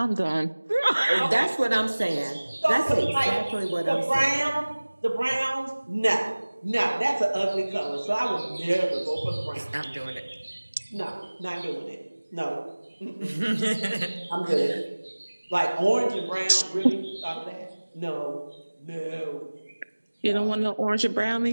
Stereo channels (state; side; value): inverted; both; correlation -1.00